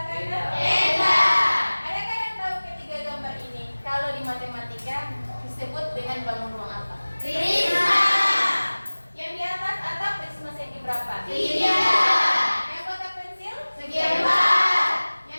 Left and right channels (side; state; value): both; inverted; correlation -1.00